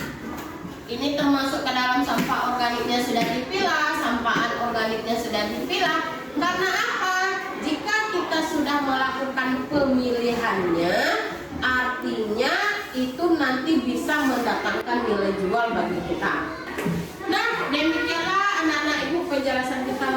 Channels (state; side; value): identical; both; correlation 1.00